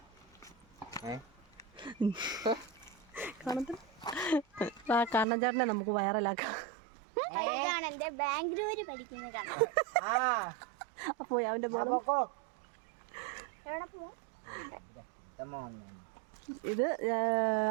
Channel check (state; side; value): drops out; left; at 5.2 s